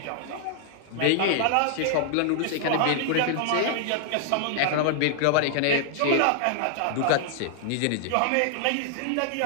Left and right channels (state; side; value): different; both; correlation 0.00